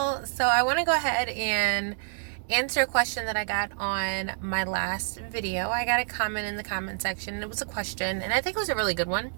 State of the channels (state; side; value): silent; left; digital silence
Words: So I want to go ahead and answer a question that I got on my last video. I got a comment in the comment section. It was a question, and I think it was a really good one.